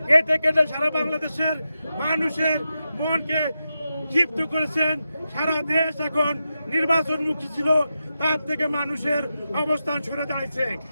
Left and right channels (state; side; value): inverted; both; correlation -0.89